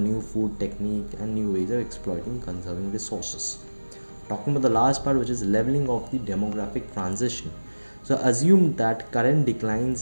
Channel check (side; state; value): both; inverted; correlation -1.00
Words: food technique and new ways of exploiting conserving resources. Talking about the last part, which is leveling of the demographic transition. So assume that current